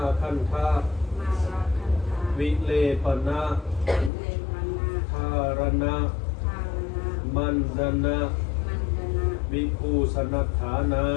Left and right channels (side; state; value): right; drops out; at 4.1 s